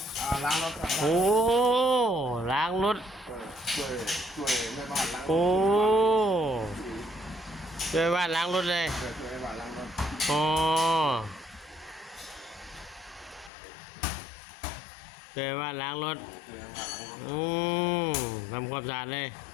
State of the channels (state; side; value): drops out; right; at 13.5 s